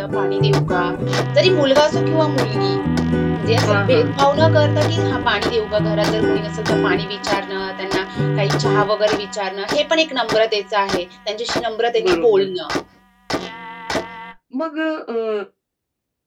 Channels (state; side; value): identical; both; correlation 1.00